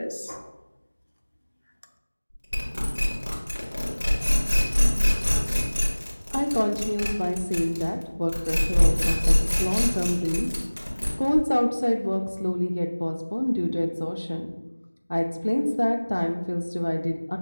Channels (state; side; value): inverted; both; correlation -1.00